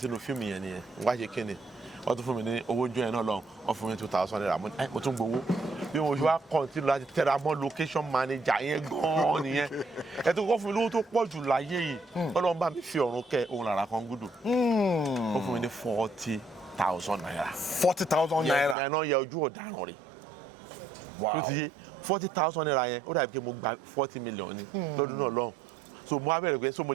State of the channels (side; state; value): left; drops out; at 18.8 s